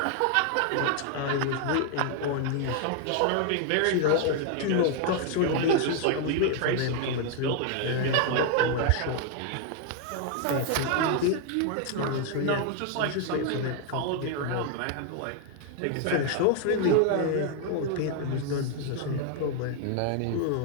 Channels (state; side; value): different; both; correlation 0.00